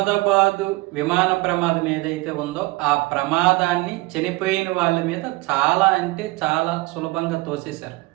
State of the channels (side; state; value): left; quieter; 22.2 dB